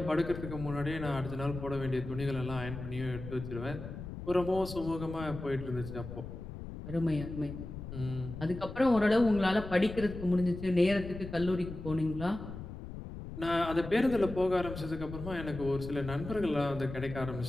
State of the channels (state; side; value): noise; left; rumble, 10 dB below the sound